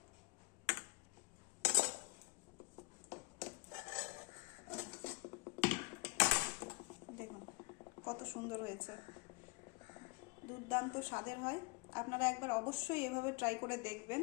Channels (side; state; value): right; quieter; 27.0 dB